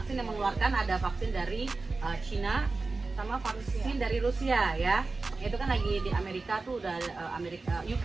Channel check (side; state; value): left; quieter; 3.7 dB